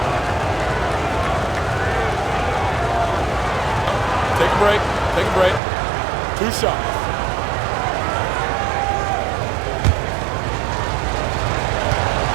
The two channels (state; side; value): drops out; left; at 5.6 s